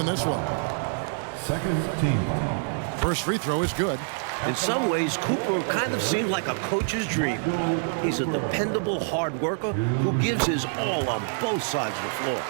this one. Second team foul. First free throw is good. In some ways, Cooper kind of seemed like a coach's dream. He's a dependable hard worker who gives his all on both sides of the floor.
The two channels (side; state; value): left; silent; digital silence